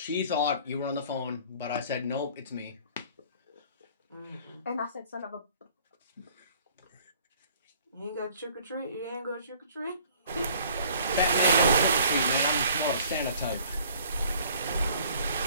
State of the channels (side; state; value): both; inverted; correlation -0.54